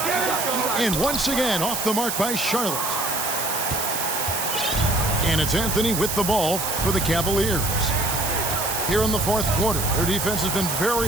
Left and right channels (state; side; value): noise; right; hiss, 2 dB below the sound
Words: And once again off the mark by Charlotte. And it's Anthony with the ball for the Cavaliers. Here in the fourth quarter, their defense has been